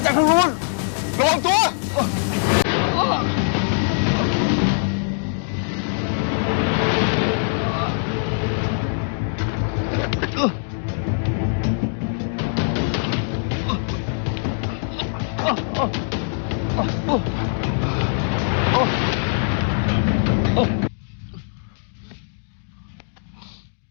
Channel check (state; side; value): silent; right; digital silence